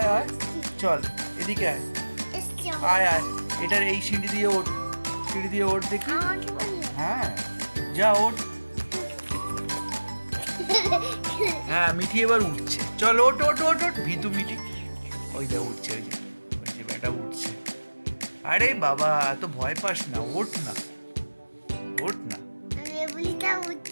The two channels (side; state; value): both; inverted; correlation -1.00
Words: চল এদিকে আয়। এটার এই সিঁড়ি দিয়ে ওঠ দেখি। হ্যাঁ, যা ওঠ। হ্যাঁ, মিঠি এবার উঠছে। চল, ওঠ। ভীতু মিঠি, ওই দেখ উঠছে, ওই যে বেটা উঠছে। আরে বাবা, এত ভয় পাস না, ওঠ না।